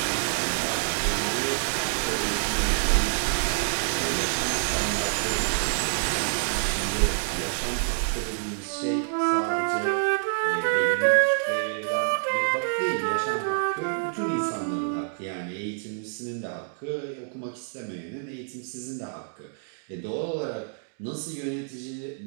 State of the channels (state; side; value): silent; left; digital silence